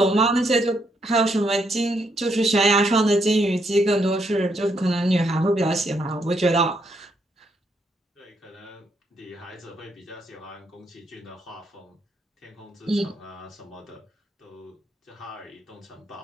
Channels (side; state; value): both; normal; correlation 0.76